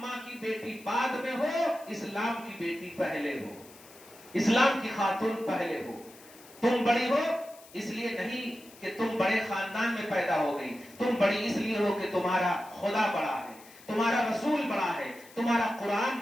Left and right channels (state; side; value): noise; left; hiss, 22 dB below the sound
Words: کی بیٹی بعد میں ہو، اسلام کی بیٹی پہلے ہو، اسلام کی خاتون پہلے ہو. تم بڑی ہو اس لیے نہیں کہ تم بڑے خاندان میں پیدا ہو گئی. تم بڑی اس لیے ہو کہ تمہارا خدا بڑا ہے، تمہارا رسول بڑا ہے، تمہارا قرآن